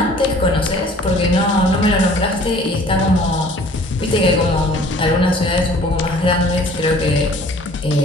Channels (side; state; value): both; normal; correlation 0.52